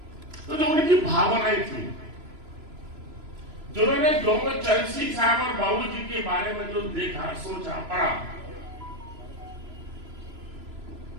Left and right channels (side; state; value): left; late; 3.0 ms